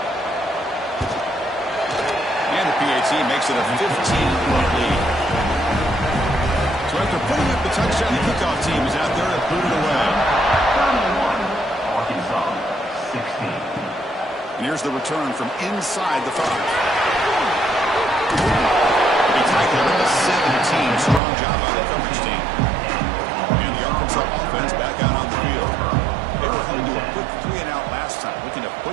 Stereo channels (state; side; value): drops out; left; at 21.2 s